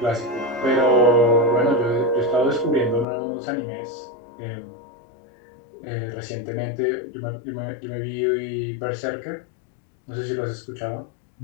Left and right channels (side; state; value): right; drops out; at 3.1 s